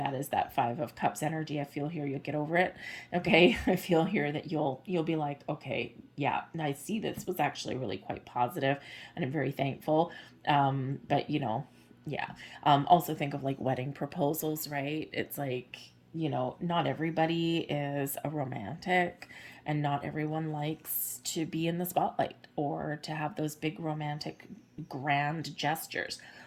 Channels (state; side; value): identical; both; correlation 1.00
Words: is that 5 of Cups energy. I feel here you'll get over it. Okay, I feel here that you'll be like, okay, yeah, I see this was actually really quite positive, and I'm very thankful. But yeah. Also think of like wedding proposals, right? It's like, not everybody is a romantic, and not everyone likes to be in the spotlight or to have those big romantic grand gestures.